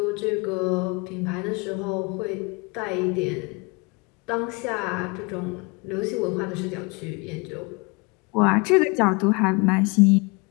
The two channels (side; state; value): right; quieter; 28.7 dB